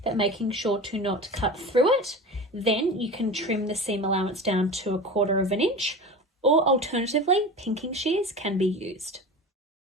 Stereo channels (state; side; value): normal; both; correlation 0.31